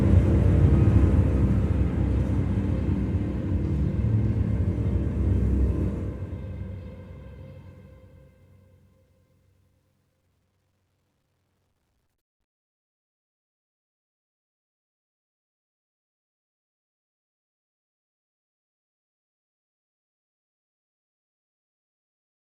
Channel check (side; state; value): both; identical; correlation 1.00